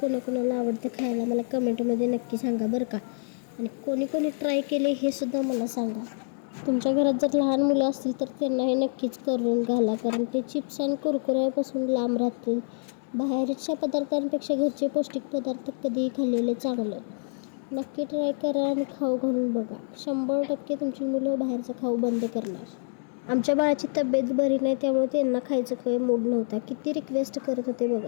आवडतं खायला मला कमेंटमध्ये नक्की सांगा बरं का. आणि कोणी कोणी ट्राय केले हे सुद्धा मला सांगा. तुमच्या घरात जर लहान मुलं असतील तर त्यांना हे नक्कीच करून घाला कारण ते चिप्स आणि कुरकुऱ्यापासून लांब राहतील. बाहेरच्या पदार्थांपेक्षा घरचे पौष्टिक पदार्थ कधीही खाल्लेले चांगलं. नक्की ट्राय करा आणि खाऊ घालून बघा. 100% तुमची मुलं बाहेरचं खाऊ बंद करणार. आमच्या बाळाची तब्येत बरी नाही त्यामुळे त्यांना खायचं काही मूड नव्हता. किती रिक्वेस्ट करत होते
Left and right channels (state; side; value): silent; right; digital silence